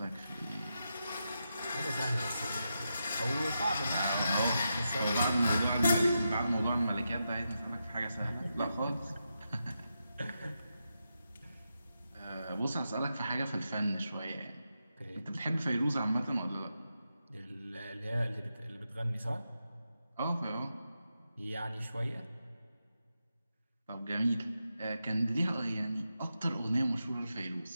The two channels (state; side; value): inverted; both; correlation -0.87